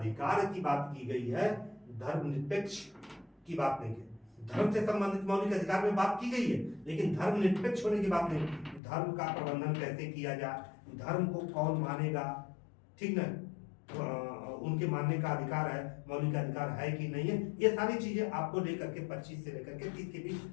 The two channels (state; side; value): drops out; right; at 8.8 s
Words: की बात की गई है, धर्मनिरपेक्ष की बात नहीं है। धर्म से संबंधित मौलिक अधिकार में बात की गई है, लेकिन धर्मनिरपेक्ष होने की बात नहीं। धर्म का प्रबंधन कैसे किया जाए, धर्म को कौन मानेगा, ठीक ना, उनके मानने का अधिकार है, मौलिक अधिकार है कि नहीं है, ये सारी चीजें आपको लेकर के 25 से लेकर के 30 के बीच